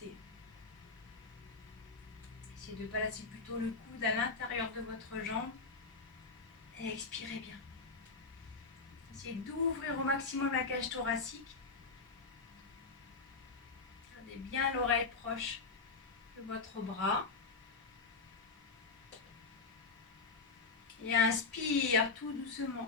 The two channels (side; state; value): right; quieter; 4.3 dB